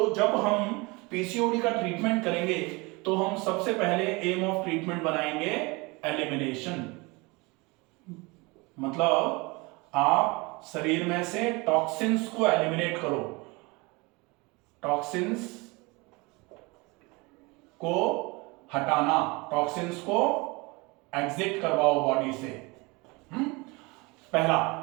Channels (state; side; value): quieter; left; 25.9 dB